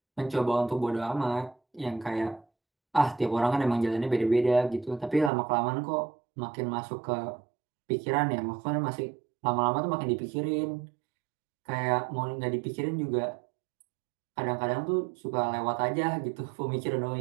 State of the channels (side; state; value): left; drops out; at 5.3 s